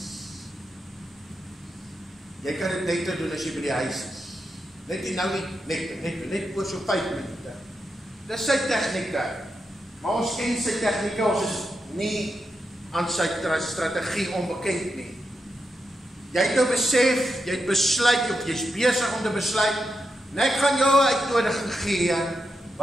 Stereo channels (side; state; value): both; normal; correlation 0.86